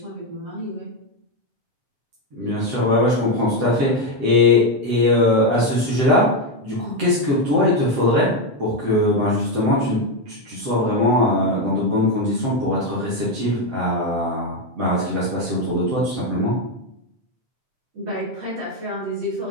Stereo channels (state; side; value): late; left; 7.6 ms